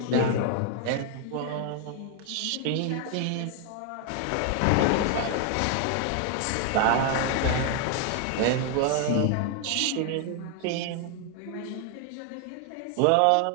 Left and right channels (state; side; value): different; both; correlation 0.00